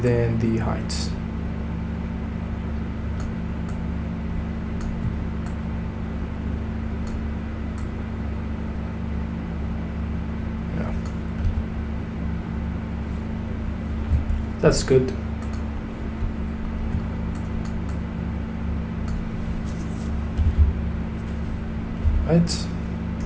then the height. Yeah. That's good. Right.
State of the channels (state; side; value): identical; both; correlation 1.00